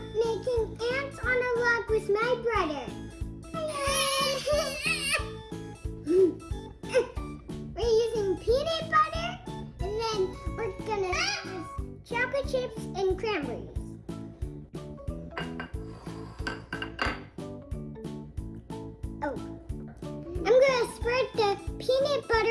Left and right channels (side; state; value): both; identical; correlation 1.00